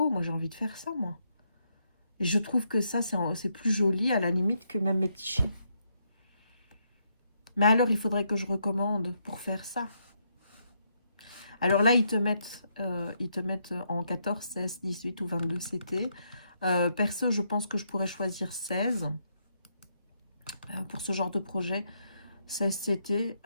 moi j'ai envie de faire ça, moi. Et je trouve que ça, c'est plus joli à la limite que même mes petits chiens. Mais alors, il faudrait que je recommande pour faire ça. Alors là, ils te mettent en 14, 16, 18 ou 22 CT. Perso, je pense que je pourrais choisir 16 pour ce genre de projet. 16 CT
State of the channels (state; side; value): inverted; both; correlation -0.77